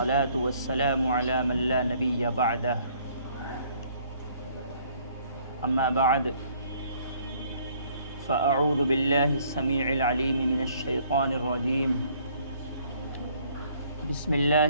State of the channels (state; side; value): inverted; both; correlation -0.61